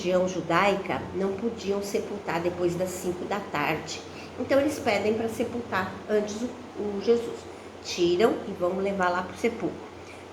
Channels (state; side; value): identical; both; correlation 1.00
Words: judaica não podiam sepultar depois das 5 da tarde. Então eles pedem para sepultar antes o Jesus. Tiram e vão levar lá para o sepulcro.